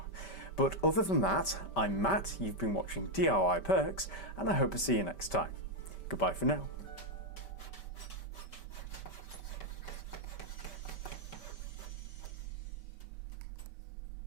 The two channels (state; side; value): late; right; 5.1 ms